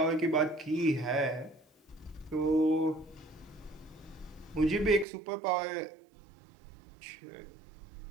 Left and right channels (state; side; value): drops out; left; at 5.1 s